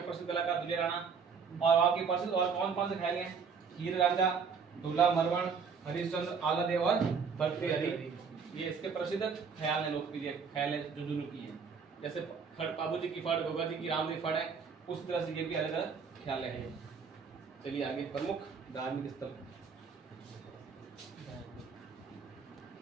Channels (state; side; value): quieter; left; 5.8 dB